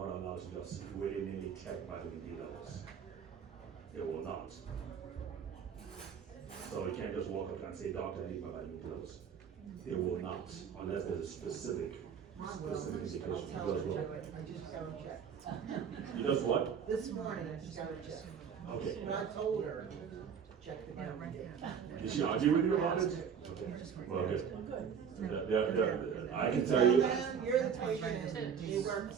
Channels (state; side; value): quieter; left; 7.3 dB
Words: allowed to just willy-nilly check vitamin D levels. They will not. So you can't just walk up and say, doctor, I need my vitamin D levels. They will not, unless there's a specific indication. I'll tell her to do it. I just got to check. You just what? This morning, I just got to check. Okay. But I told her, check the vitamin D. Did she argue with you about it? Okay. Well, good. I can tell you. You're the patient, and they work